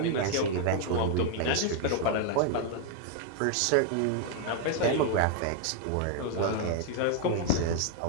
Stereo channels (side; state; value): both; different; correlation 0.00